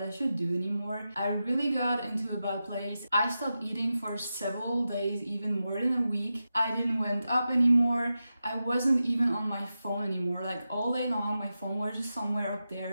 I should do anymore. I really got into a bad place. I stopped eating for several days, even more than a week. I didn't went up anymore. I wasn't even on my phone anymore. Like all day long, my phone was just somewhere up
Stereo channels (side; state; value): both; inverted; correlation -0.91